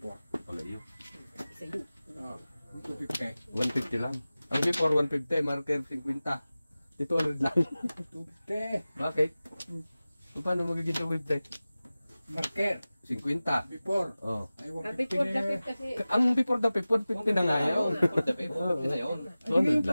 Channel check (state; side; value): inverted; both; correlation -0.97